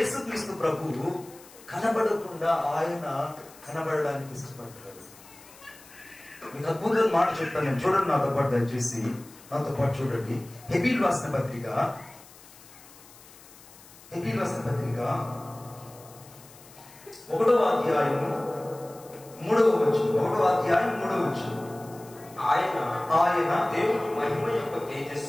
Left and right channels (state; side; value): noise; left; hiss, 22 dB below the sound